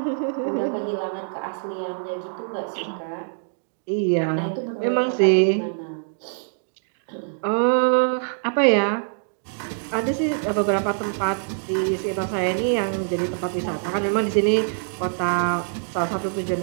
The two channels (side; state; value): left; silent; digital silence